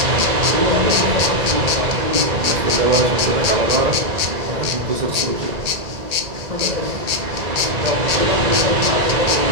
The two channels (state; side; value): late; left; 1.8 ms